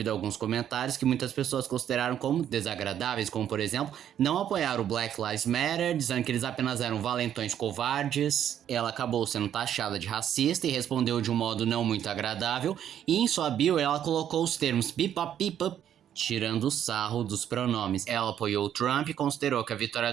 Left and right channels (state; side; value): quieter; left; 10.0 dB